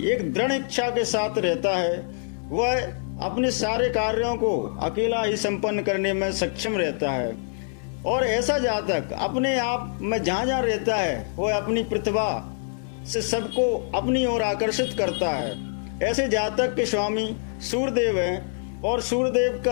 एक दृढ़ इच्छा के साथ रहता है। वह अपने सारे कार्यों को अकेला ही संपन्न करने में सक्षम रहता है और ऐसा जातक अपने आप में जहाँ जहाँ रहता है वह अपनी प्रतिभा से सबको अपनी ओर आकर्षित करता है। ऐसे जातक के स्वामी सूर्यदेव हैं और सूर्यदेव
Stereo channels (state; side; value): silent; right; 62 dB below the other